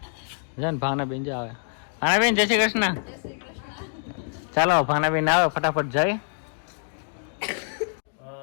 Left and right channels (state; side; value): silent; right; 61 dB below the other